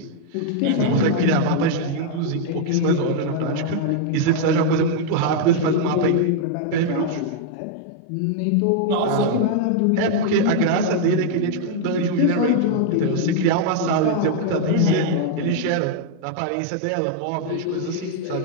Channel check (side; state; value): both; different; correlation 0.00